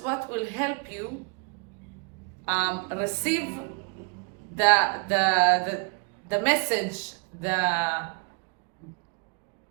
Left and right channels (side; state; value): left; quieter; 35.1 dB